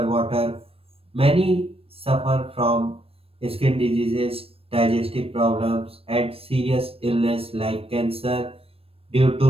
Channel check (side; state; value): left; late; 0.28 ms